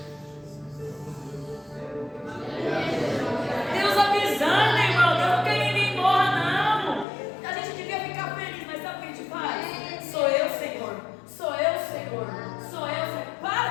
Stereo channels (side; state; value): right; drops out; at 7.1 s